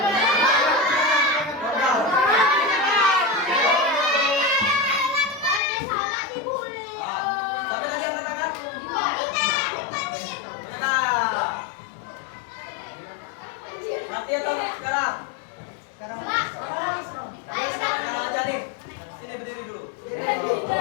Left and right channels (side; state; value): right; drops out; at 5.6 s